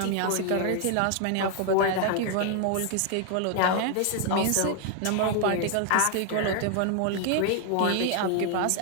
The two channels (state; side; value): different; both; correlation 0.00